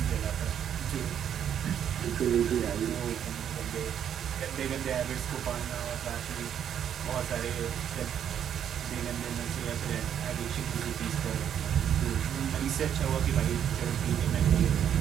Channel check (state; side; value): quieter; left; 9.2 dB